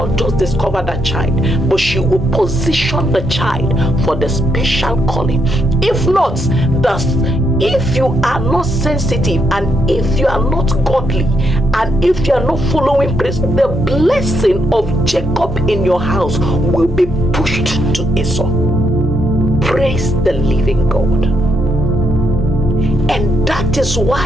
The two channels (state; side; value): normal; both; correlation 0.78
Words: just discover that child, but she will position the child for the special calling. If not, if you are not sensitive, and if you are not godly, and if you are not following praise, the blessing of Jacob in your house will be pushed to Esau. Praise the living God. And that is